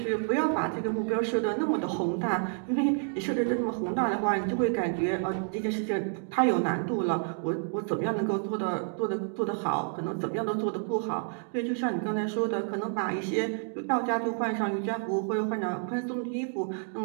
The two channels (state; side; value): silent; left; 58 dB below the other